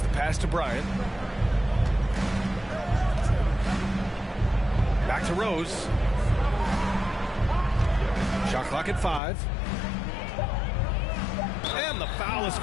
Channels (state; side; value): drops out; right; at 9.2 s